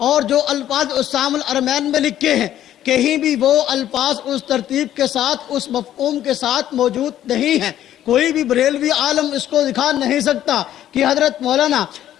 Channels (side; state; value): right; quieter; 11.9 dB